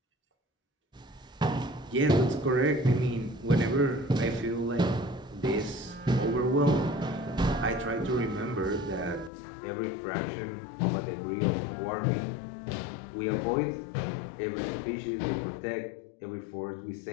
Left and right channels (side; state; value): right; drops out; at 9.3 s